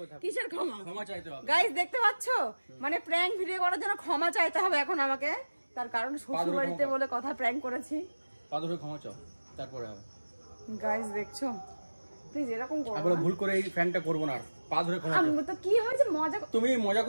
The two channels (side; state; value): both; inverted; correlation -1.00